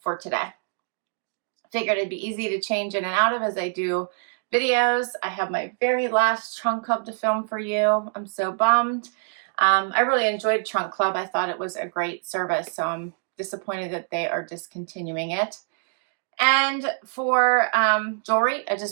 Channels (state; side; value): silent; left; 62 dB below the other